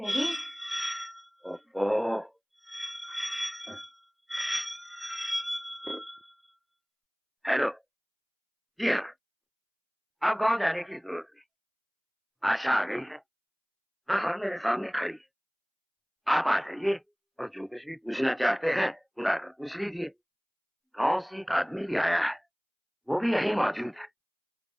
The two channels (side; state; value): both; identical; correlation 1.00